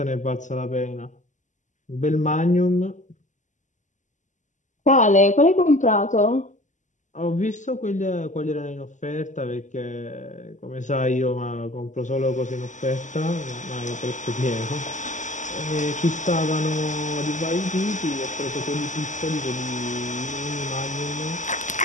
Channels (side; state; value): right; late; 0.36 ms